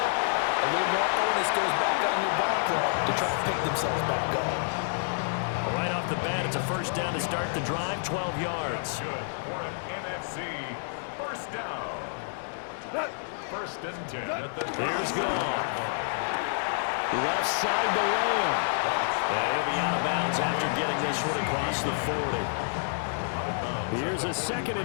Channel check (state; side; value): silent; right; digital silence